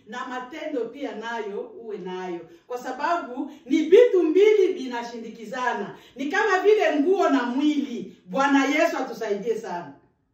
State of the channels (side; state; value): both; identical; correlation 1.00